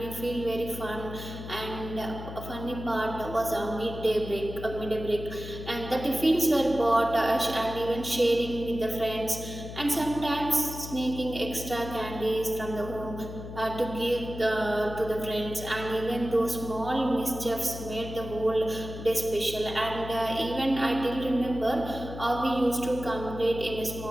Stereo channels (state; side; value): noise; left; hum, 10 dB below the sound